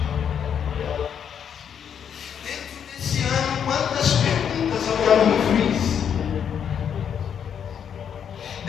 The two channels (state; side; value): quieter; right; 8.1 dB